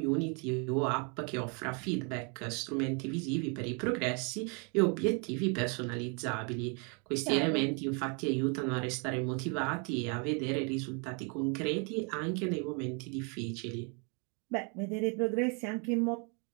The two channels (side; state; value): left; quieter; 35.4 dB